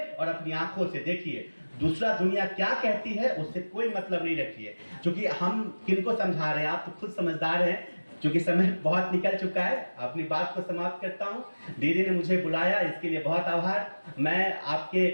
और अपनी आंखों से देखिए। दूसरा दुनिया क्या कहती है उससे कोई मतलब नहीं रखिए, क्योंकि हम किनको समझा रहे हैं, आप तो खुद समझदार हैं। क्योंकि समय बहुत निकल चुका है, अपनी बात को समाप्त करता हूं। दीदी ने मुझे बुलाया, इसके लिए बहुत आभार। मैं आपके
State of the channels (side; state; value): both; inverted; correlation -1.00